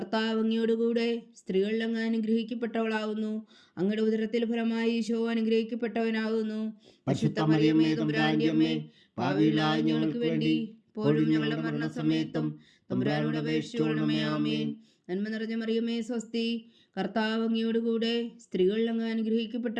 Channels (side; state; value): both; identical; correlation 1.00